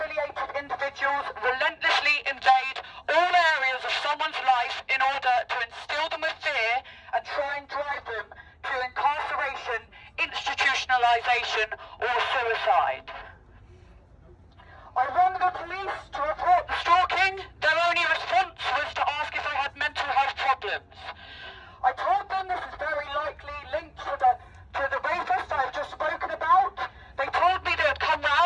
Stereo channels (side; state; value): both; identical; correlation 1.00